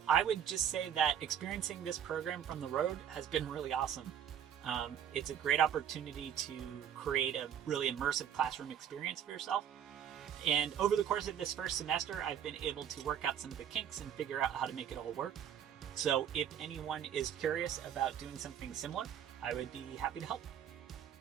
I would just say that experiencing this program from the road has been really awesome. It's a great opportunity to create a really immersive classroom experience for yourself. And over the course of this first semester, I've been able to work out some of the kinks and figure out how to make it all work. So if anyone is curious about doing something similar, I would be happy to help.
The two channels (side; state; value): left; quieter; 9.2 dB